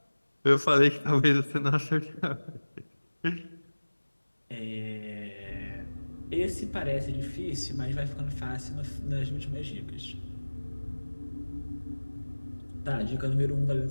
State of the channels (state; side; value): inverted; both; correlation -1.00